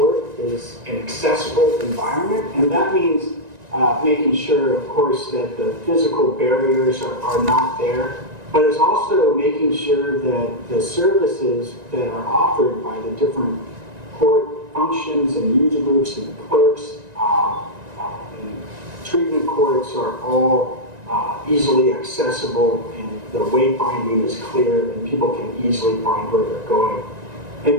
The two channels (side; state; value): left; late; 1.9 ms